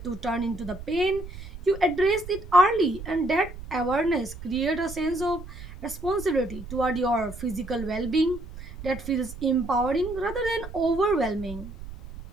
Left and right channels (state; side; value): noise; right; rumble, 13 dB below the sound